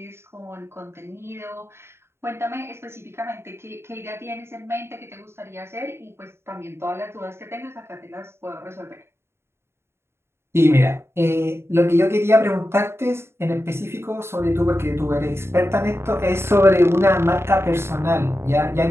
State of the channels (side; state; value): left; late; 0.12 ms